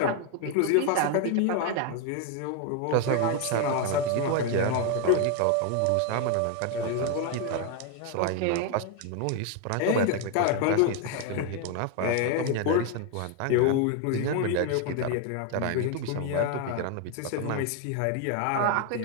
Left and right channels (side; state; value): both; different; correlation 0.01